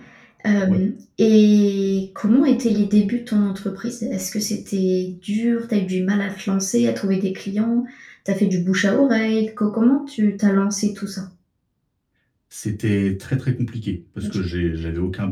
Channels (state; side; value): identical; both; correlation 1.00